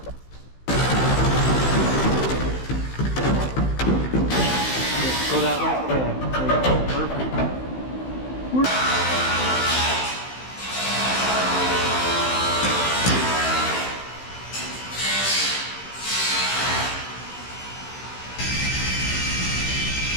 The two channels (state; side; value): late; right; 15 ms